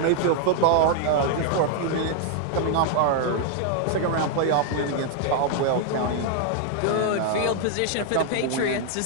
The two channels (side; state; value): both; different; correlation 0.00